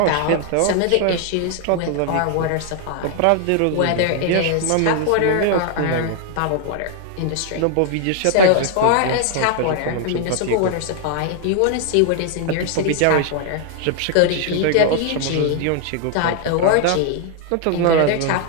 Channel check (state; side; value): different; both; correlation 0.00